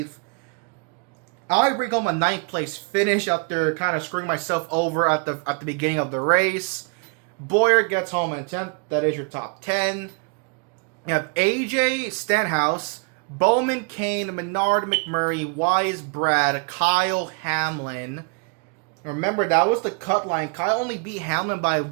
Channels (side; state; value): left; quieter; 34.1 dB